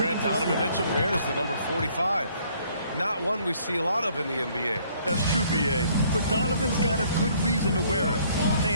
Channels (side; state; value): both; inverted; correlation -0.63